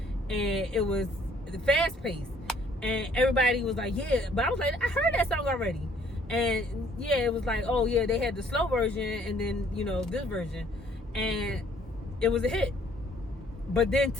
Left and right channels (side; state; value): both; normal; correlation 0.61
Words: and it was the fast pace, and everybody was like, yeah, but I was like, I heard that song already. And yeah, it was like, oh yeah, they had the slow version and then this version, and it was a hit. But then